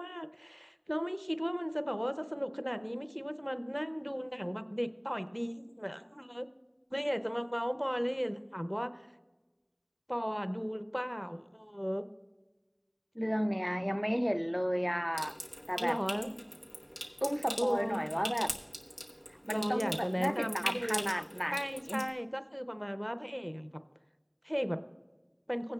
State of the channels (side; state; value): both; identical; correlation 1.00